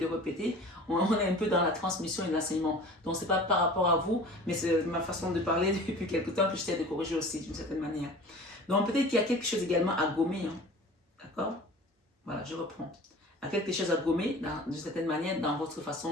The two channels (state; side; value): normal; both; correlation 0.41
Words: répéter, on est un peu dans la transmission et l'enseignement. Donc, ce n'est pas par rapport à vous, mais c'est ma façon de parler depuis quelque temps que j'essaie de corriger aussi d'une certaine manière. Donc, peut-être qu'il y a quelque chose également à gommer, hein, d'accord? Voilà, je reprends. Il y a quelque chose à gommer, d'une certaine manière, dans votre